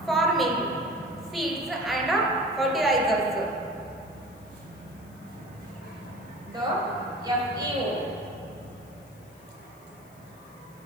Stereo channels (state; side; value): noise; left; hiss, 27 dB below the sound